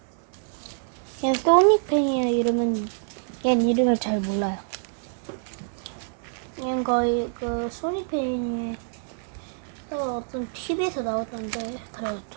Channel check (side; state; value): left; silent; digital silence